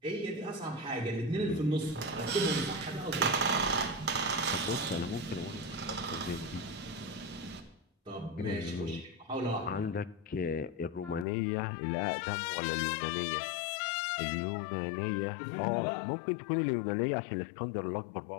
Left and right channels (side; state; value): right; drops out; at 11.2 s